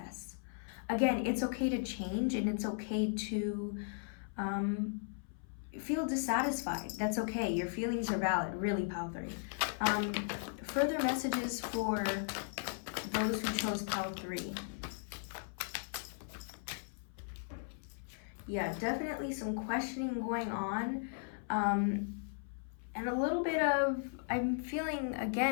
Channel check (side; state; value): right; silent; 53 dB below the other